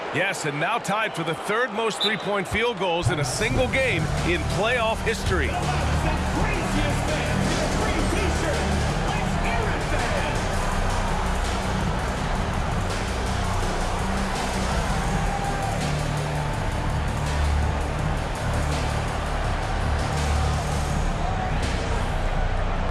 Yes, and now tied for the 3rd most three-point field goals in a single game in playoff history.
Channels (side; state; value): both; identical; correlation 1.00